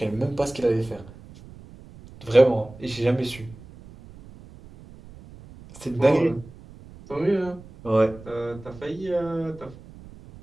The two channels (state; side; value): noise; right; rumble, 19 dB below the sound